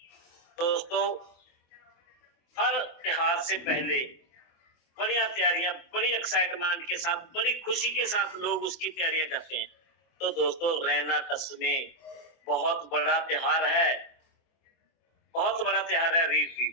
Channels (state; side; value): late; right; 24 ms